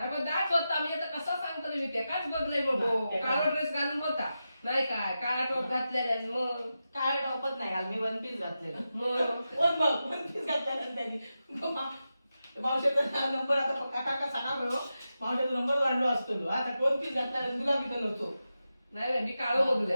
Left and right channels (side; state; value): both; inverted; correlation -0.91